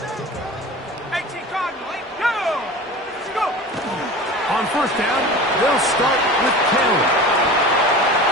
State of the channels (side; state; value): both; normal; correlation 0.35